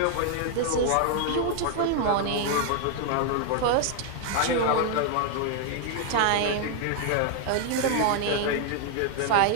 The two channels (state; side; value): different; both; correlation 0.00